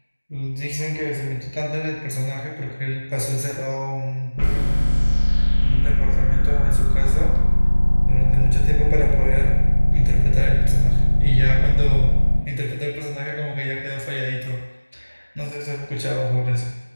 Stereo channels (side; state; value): both; inverted; correlation -1.00